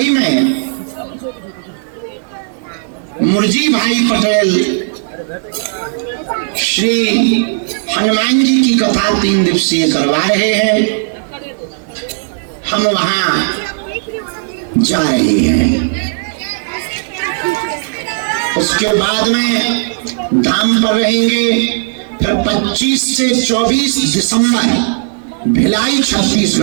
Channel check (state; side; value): silent; left; digital silence